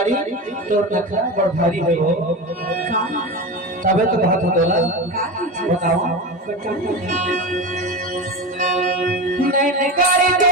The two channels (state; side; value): normal; both; correlation 0.23